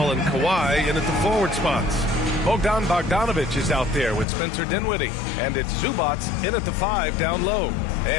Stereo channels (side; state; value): right; drops out; at 4.2 s